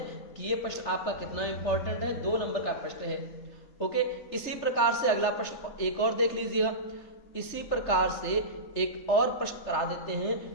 कि ये प्रश्न आपका कितना इंपॉर्टेंट है, 2 नंबर का प्रश्न है। ओके, इसी प्रकार से अगला प्रश्न एक और देख लीजिएगा, इसी प्रकार से एक और प्रश्न करा देते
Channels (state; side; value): late; right; 3.3 ms